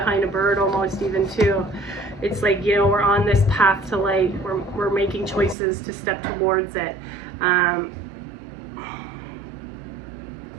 a bird almost even too. It's like, you know, we're on this path to light. We're making choices to step towards it.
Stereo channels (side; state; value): left; drops out; at 5.6 s